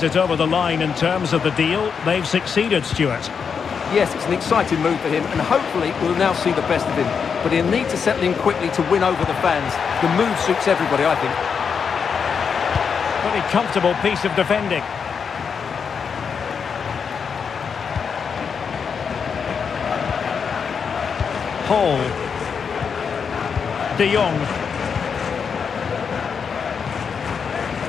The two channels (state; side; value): quieter; right; 6.4 dB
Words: it over the line in terms of the deal. They've succeeded, Stuart. Yes, it's an exciting move for him, and hopefully we'll now see the best of him. But he'll need to settle in quickly to win over the fans. The move suits everybody, I think. Pretty comfortable piece of defending. Hall. De Jong.